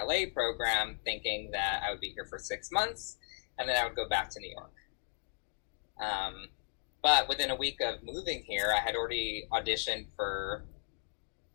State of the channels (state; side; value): silent; right; 54 dB below the other